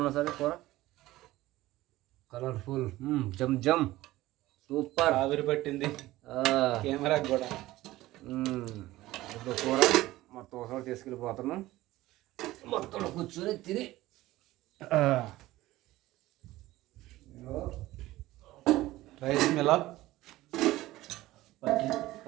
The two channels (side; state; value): left; quieter; 17.0 dB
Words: సరే కూర కలర్ఫుల్ జమ్ జమ్ సూపర్ ఆవిరి పట్టింది కెమెరా కూడా. ఇప్పుడు కూర మొత్తం ఒకసారి తీసుకెళ్ళిపోతున్నాం. మొత్తం కూర్చొని తిని రైస్ మిలా